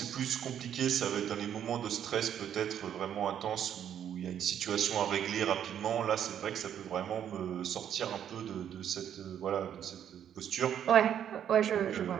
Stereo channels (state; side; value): quieter; left; 9.5 dB